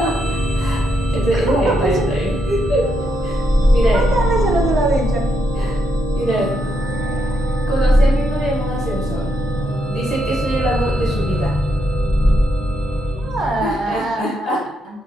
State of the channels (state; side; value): normal; both; correlation 0.80